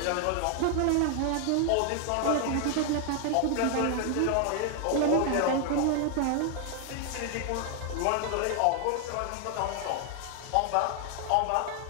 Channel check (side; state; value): both; different; correlation 0.00